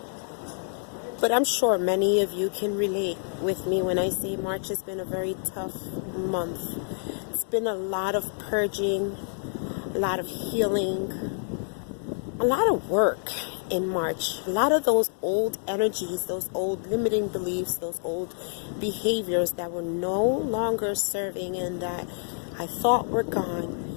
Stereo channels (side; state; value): right; silent; digital silence